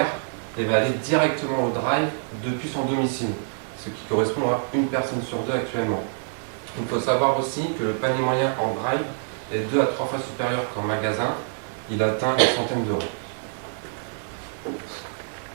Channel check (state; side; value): silent; left; digital silence